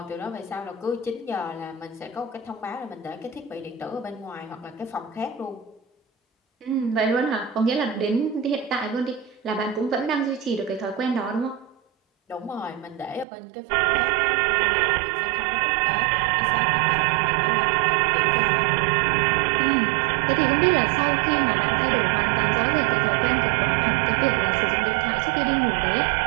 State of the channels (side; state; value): left; drops out; at 13.2 s